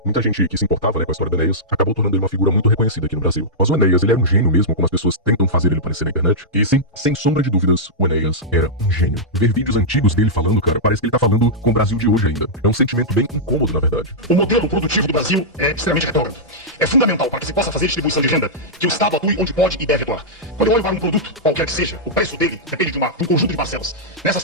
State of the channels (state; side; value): normal; both; correlation -0.10